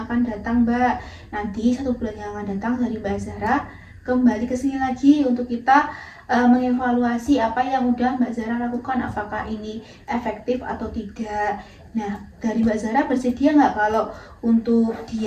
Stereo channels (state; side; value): identical; both; correlation 1.00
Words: datang Mbak. Nanti 1 bulan yang akan datang dari Mbak Zahra kembali ke sini lagi untuk kita mengevaluasi apa yang udah Mbak Zahra lakukan, apakah ini efektif atau tidak. Nah dari Mbak Zahra bersedia nggak kalau untuk